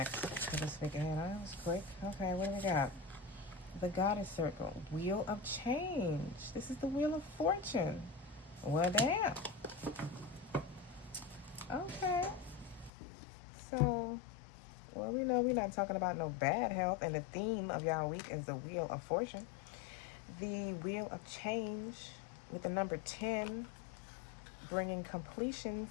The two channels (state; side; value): drops out; right; at 12.9 s